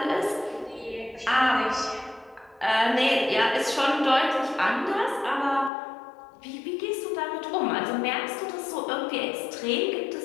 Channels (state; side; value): drops out; right; at 5.7 s